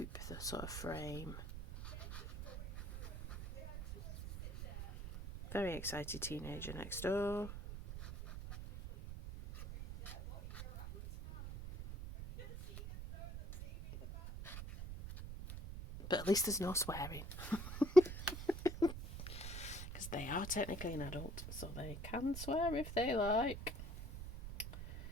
the sort of frame. Very excited teenager next door. But at least there's no swearing. Because they are technically an adult, so they can swear if they like.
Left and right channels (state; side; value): noise; right; rumble, 8 dB below the sound